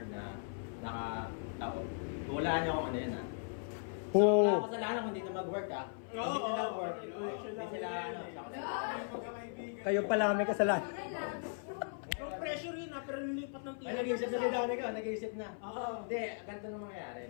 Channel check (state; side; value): silent; right; 53 dB below the other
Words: na naka-tao. Hulaan niyo kung ano yun, ha? So, wala kasalanan kung hindi na mag-work, ha? Kung hindi na work, hindi sila, Kayo pala may kasalanan. Yung pressure yun ha, pero nilipat ng TL. Ay, nag-iisip na si Dani ka, nag-iisip na. Oo. Hindi, ganito nang mangyayari.